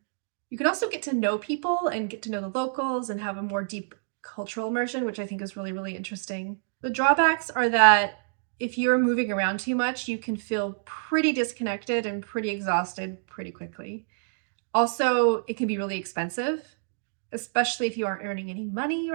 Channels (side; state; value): left; silent; digital silence